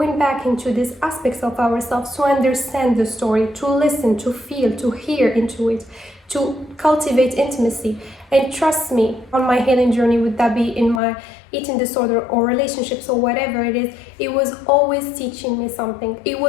back into these aspects of ourselves to understand the story, to listen, to feel, to hear into it, to cultivate intimacy. And trust me, on my healing journey, would that be in my eating disorder or relationships or whatever it is, it was always teaching me something. It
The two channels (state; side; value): drops out; right; at 11.0 s